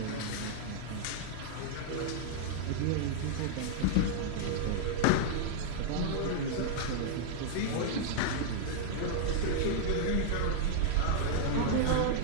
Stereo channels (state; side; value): different; both; correlation -0.01